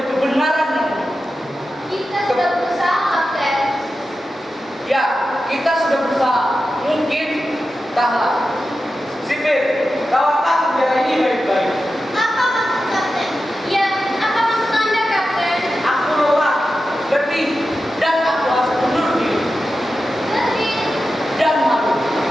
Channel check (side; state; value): both; normal; correlation 0.92